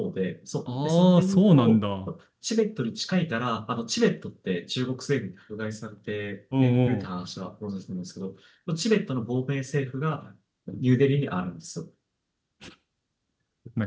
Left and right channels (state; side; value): identical; both; correlation 1.00